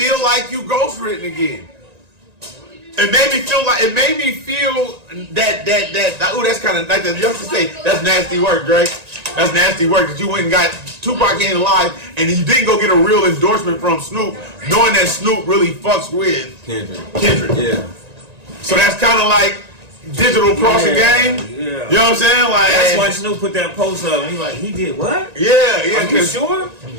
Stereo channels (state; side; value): late; left; 1.9 ms